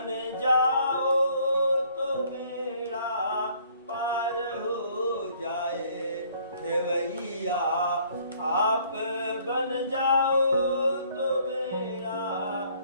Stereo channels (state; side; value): inverted; both; correlation -0.61